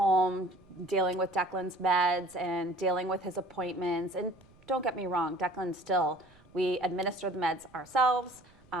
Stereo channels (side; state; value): right; noise; rumble, 28 dB below the sound